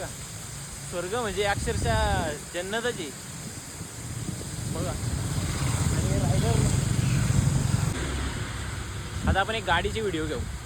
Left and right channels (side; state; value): both; identical; correlation 1.00